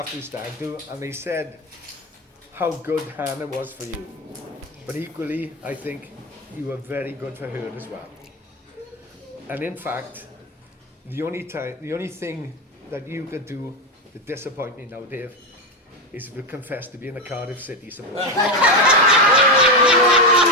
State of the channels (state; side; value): normal; both; correlation 0.12